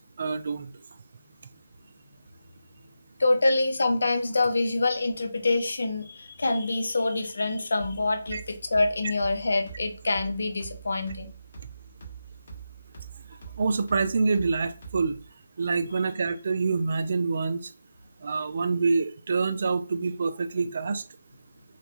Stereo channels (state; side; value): inverted; both; correlation -0.89